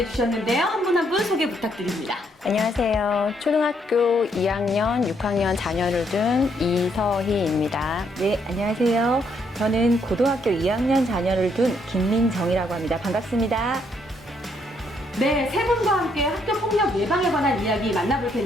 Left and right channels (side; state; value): both; normal; correlation 0.72